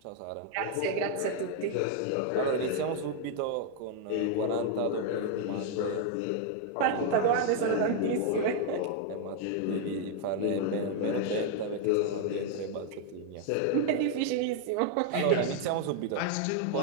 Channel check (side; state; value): both; different; correlation 0.00